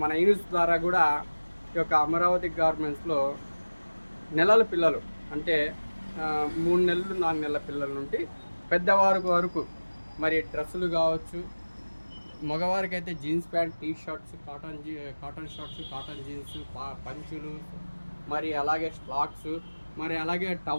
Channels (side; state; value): both; inverted; correlation -1.00